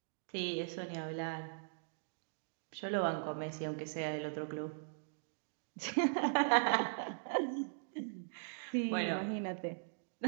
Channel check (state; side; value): silent; left; digital silence